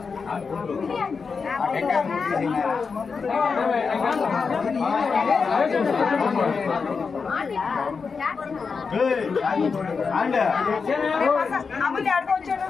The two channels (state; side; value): quieter; right; 5.2 dB